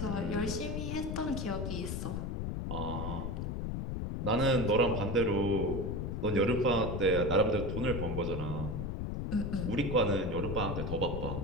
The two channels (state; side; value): noise; left; rumble, 3 dB below the sound